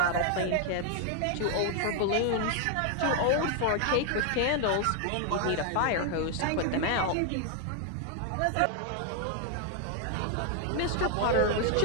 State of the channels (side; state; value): both; different; correlation 0.00